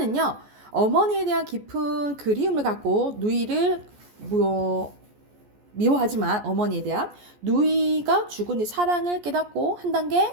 어머니에 대한 깊은 그리움을 갖고 누이를 미워하지만 어머니에 대한 누이가 죽은 뒤 사랑을 깨닫고 한 단계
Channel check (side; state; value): left; late; 14 ms